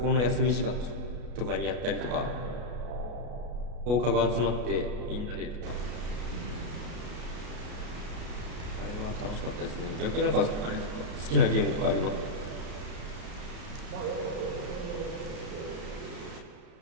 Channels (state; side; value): late; left; 33 ms